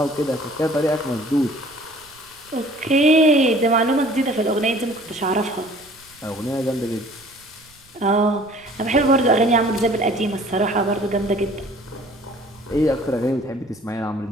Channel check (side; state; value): right; noise; rumble, 29 dB below the sound